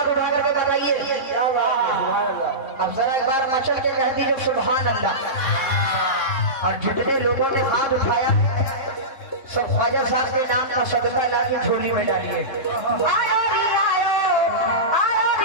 उठा करके बताइए। अब जरा एक बार मचल के कह दीजिए सुभान अल्लाह। और जितने लोगों ने हाथ उठाया सब ख्वाजा साहब के नाम का सदका ला के झोली में डालिए।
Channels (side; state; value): right; late; 3.7 ms